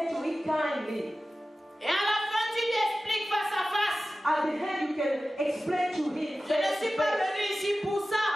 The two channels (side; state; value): both; normal; correlation 0.95